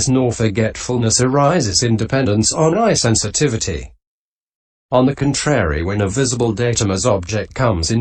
nor forgetfulness arises in dependence on eye sensitivity. On the contrary, when a visible datum as object comes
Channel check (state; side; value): identical; both; correlation 1.00